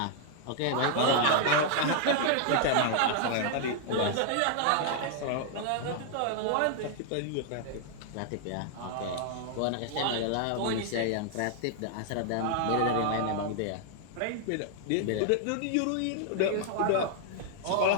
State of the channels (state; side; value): different; both; correlation 0.00